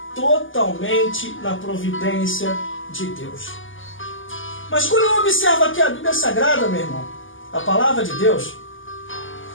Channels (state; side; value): late; right; 0.58 ms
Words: totalmente na providência de Deus. Mas quando eu observo aqui a Bíblia Sagrada, meu irmão, a palavra de Deus,